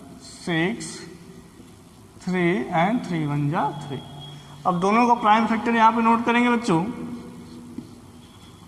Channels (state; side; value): identical; both; correlation 1.00